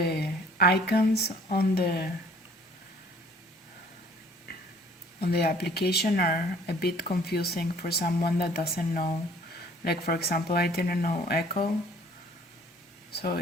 icons on the application are a bit confusing for someone that doesn't know. Like for example, I didn't know Echo, so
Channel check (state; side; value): normal; both; correlation 0.56